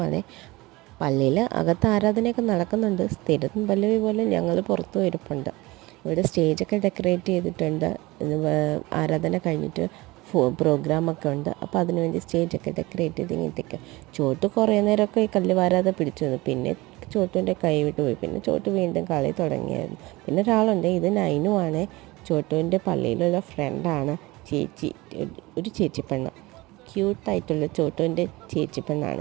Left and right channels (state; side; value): quieter; left; 21.3 dB